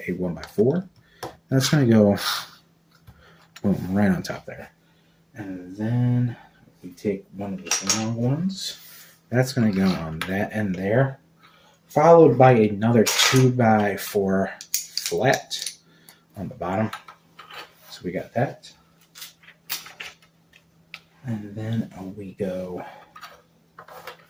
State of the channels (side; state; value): both; identical; correlation 1.00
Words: a 1x4. That's going to go boom, right on top there. And then we take one of the long ones. That's going to go on that end there. Followed by another 2x4 flat on the bottom. So we got that. And then we go,